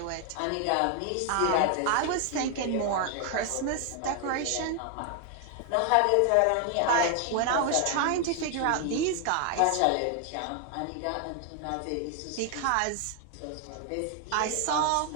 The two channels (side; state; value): both; different; correlation 0.00